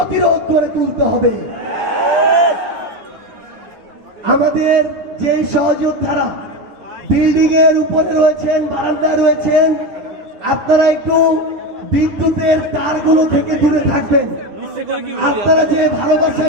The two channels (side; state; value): left; late; 10 ms